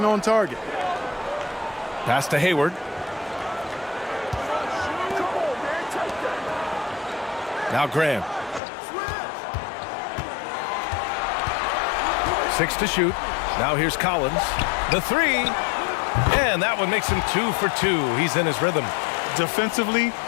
on target. Pass to Hayward. Now Graham. 6 to shoot. Now here's Collins. The three. And that one makes him 2 for 2. He's in his rhythm. Defensively,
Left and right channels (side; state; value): right; drops out; at 8.6 s